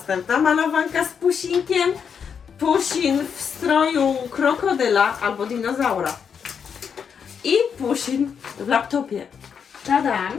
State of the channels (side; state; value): right; quieter; 6.9 dB